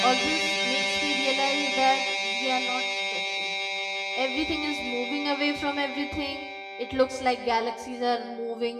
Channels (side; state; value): both; identical; correlation 1.00